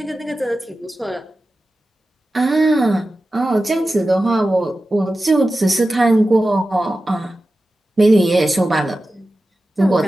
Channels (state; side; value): normal; both; correlation 0.94